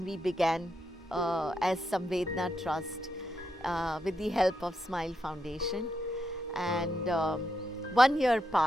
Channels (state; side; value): normal; both; correlation 0.82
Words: we began as Samvedana Trust with the help of Smile Foundation, and 1 year